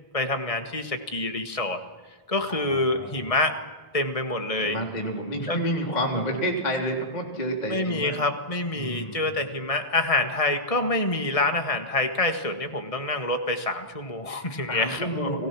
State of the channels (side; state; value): right; late; 1.6 ms